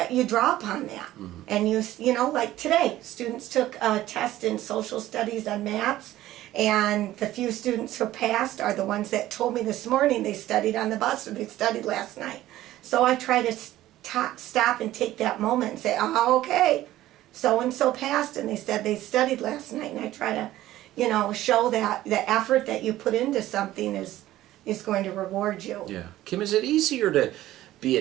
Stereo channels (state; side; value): quieter; left; 14.8 dB